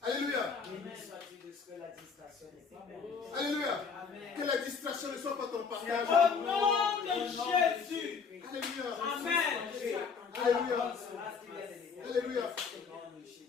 Alléluia. Amen. Sois-tu de ce que la distraction n'est pas bonne. Alléluia. Amen. Que la distraction ne soit pas ton partage. Au nom de Jésus. Alléluia. Amen. Alléluia. Alléluia.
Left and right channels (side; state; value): right; quieter; 5.6 dB